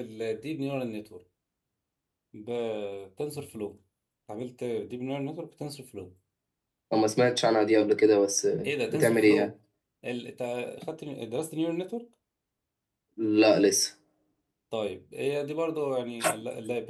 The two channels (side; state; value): both; identical; correlation 1.00